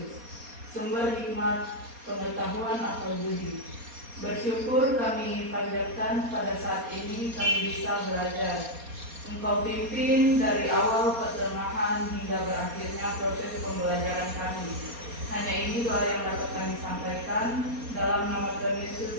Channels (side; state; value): left; late; 4.2 ms